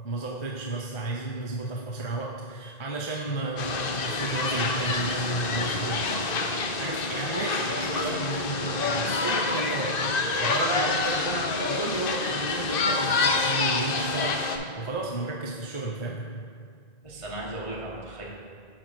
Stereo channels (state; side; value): late; right; 1.9 ms